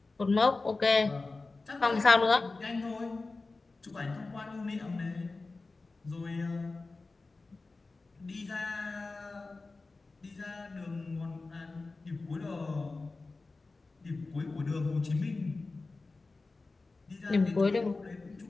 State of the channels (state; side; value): quieter; right; 3.6 dB